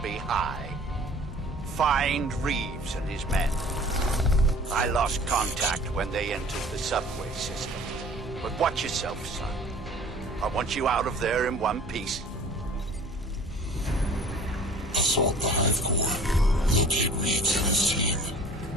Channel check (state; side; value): normal; both; correlation 0.48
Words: high. Find Reeves and his men. I lost contact when they entered the subway system. But watch yourself, son. I want you out of there in one piece. Assault the Hive Core. Locate Reeves and his team.